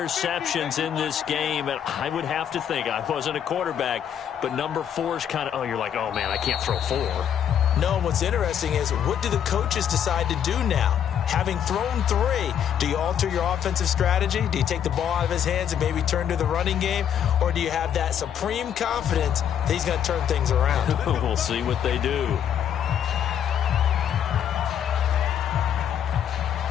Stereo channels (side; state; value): right; quieter; 9.1 dB